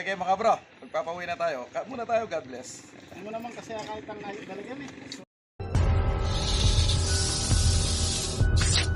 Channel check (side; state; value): both; identical; correlation 1.00